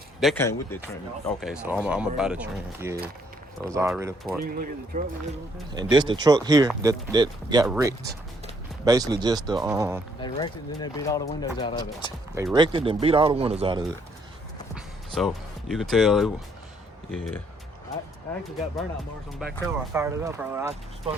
that came with the trim. Okay, so I'm gonna buy the trim. Yeah, so it's already part. You can look at the truck. And this the truck here that got wrecked. Basically just the They wrecked it and then they beat all the windows out of it. they wrecked it and beat all the windows out of it. So you can tell yeah. I actually got burnout marks on the back tail. I fired it up earlier. I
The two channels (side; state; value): both; normal; correlation 0.68